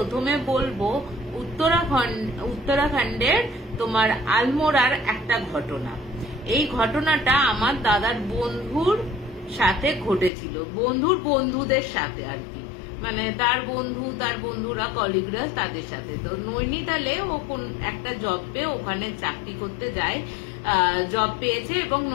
বলবো উত্তরাখণ্ডের তোমার আলমোড়ার একটা ঘটনা। এই ঘটনাটা আমার দাদার বন্ধুর সাথে ঘটেছিল, বন্ধুদের সাথে আর কি, মানে তার বন্ধুরা কলিগরা তাদের সাথে। তো নৈনিতালে ও কোন একটা জব পেয়ে ওখানে চাকরি করতে যায়, জব পেয়েছে এবং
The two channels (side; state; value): right; drops out; at 10.3 s